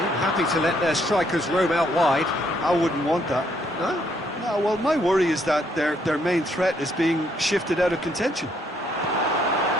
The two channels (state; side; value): normal; both; correlation 0.70